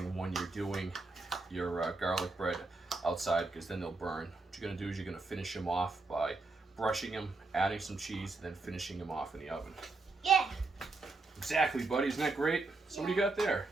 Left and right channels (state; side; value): quieter; left; 3.6 dB